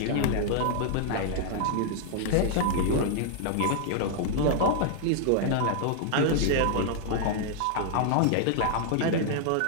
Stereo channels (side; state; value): both; different; correlation 0.00